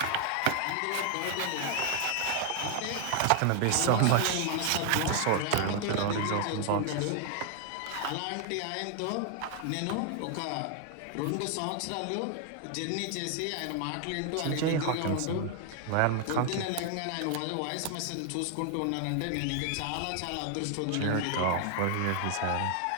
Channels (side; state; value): both; different; correlation 0.00